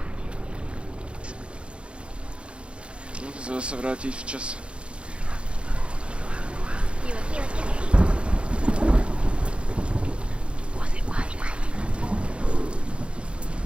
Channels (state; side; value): late; left; 0.058 ms